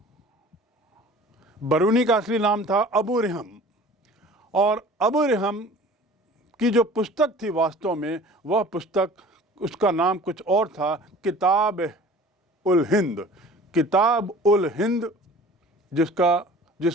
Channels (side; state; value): both; normal; correlation 0.45